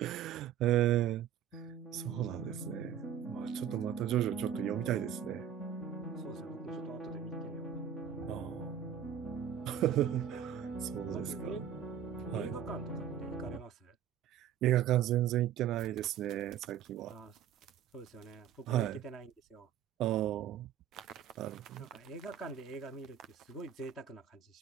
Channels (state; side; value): quieter; left; 9.5 dB